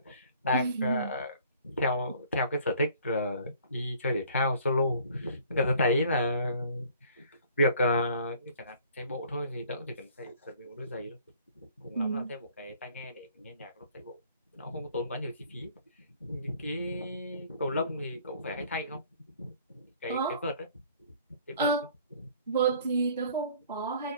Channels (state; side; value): inverted; both; correlation -0.55